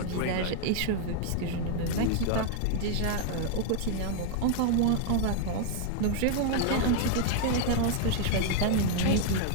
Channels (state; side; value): different; both; correlation 0.00